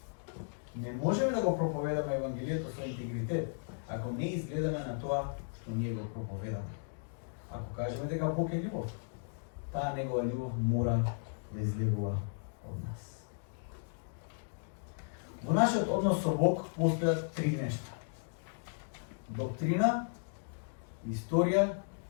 Не можеме да го проповедаме Евангелието со интегритет, ако не изгледаме на тоа што ние го проповедаме. Ако кажеме дека Бог е љубов, таа негова љубов мора да излегува од нас. Во нашиот однос со Бог постојат три нешта: доктрина, историја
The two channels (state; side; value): silent; right; digital silence